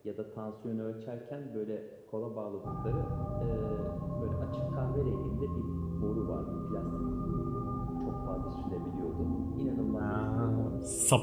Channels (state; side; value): identical; both; correlation 1.00